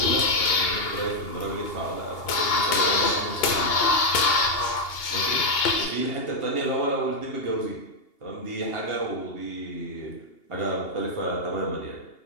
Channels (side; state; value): right; late; 2.8 ms